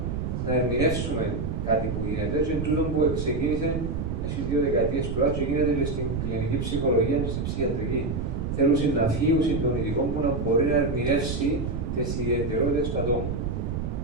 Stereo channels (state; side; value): noise; right; rumble, 3 dB below the sound